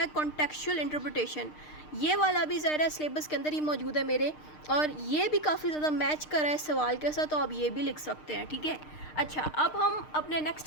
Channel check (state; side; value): late; right; 6.6 ms